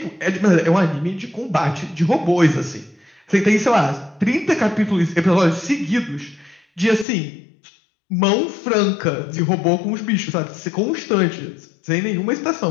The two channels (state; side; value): drops out; right; at 7.1 s